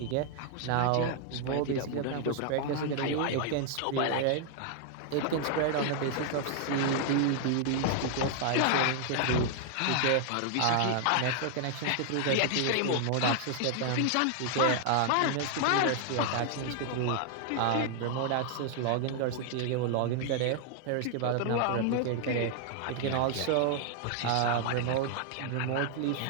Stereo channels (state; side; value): different; both; correlation 0.00